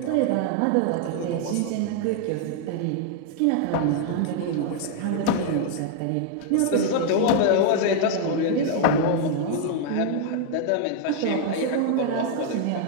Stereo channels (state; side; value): different; both; correlation 0.00